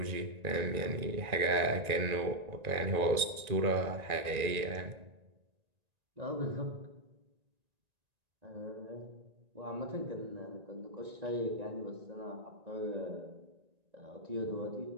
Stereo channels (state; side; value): late; left; 1.9 ms